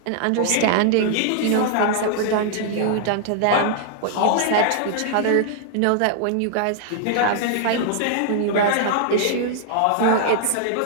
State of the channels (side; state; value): both; different; correlation -0.01